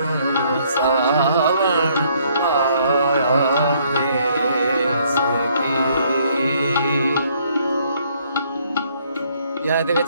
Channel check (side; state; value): both; inverted; correlation -0.66